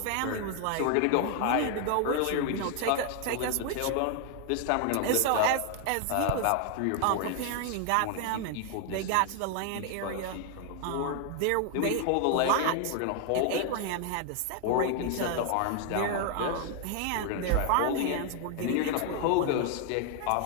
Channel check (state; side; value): different; both; correlation 0.00